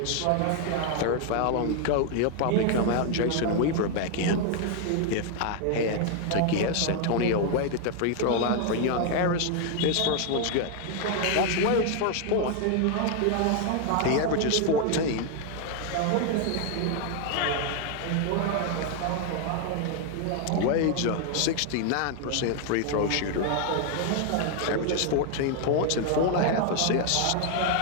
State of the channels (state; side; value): different; both; correlation 0.00